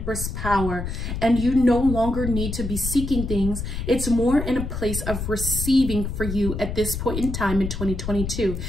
power, and you no longer need to be seeking things. It's more in a place of receiving for you at this point in time in 2022,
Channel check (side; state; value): left; noise; rumble, 5 dB below the sound